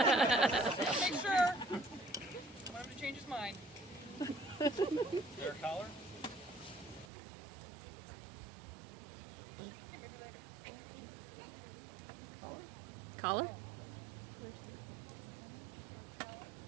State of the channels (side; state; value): left; drops out; at 7.1 s